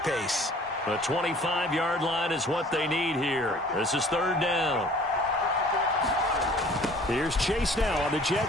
The 25-yard line is what they need here. This is 3rd down. Here's Chase now on the jet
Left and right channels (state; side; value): normal; both; correlation 0.51